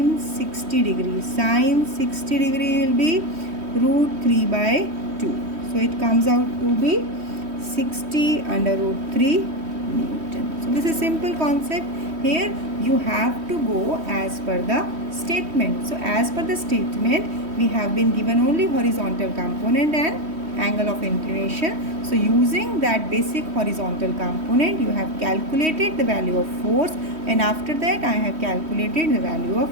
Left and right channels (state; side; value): late; left; 3.1 ms